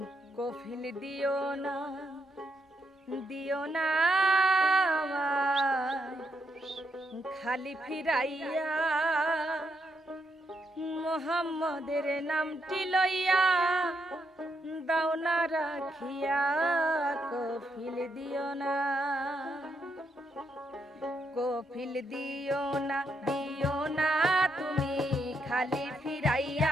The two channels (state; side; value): normal; both; correlation 0.79